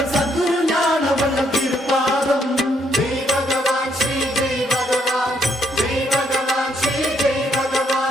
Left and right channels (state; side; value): normal; both; correlation 0.72